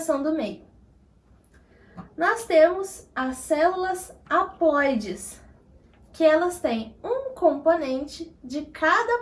do meio. Nós temos as células haploides, que elas têm um componente de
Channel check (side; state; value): both; identical; correlation 1.00